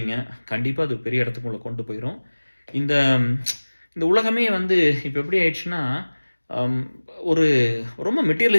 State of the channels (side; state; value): both; inverted; correlation -1.00